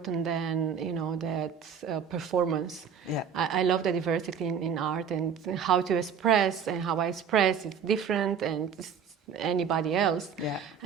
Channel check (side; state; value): left; quieter; 7.1 dB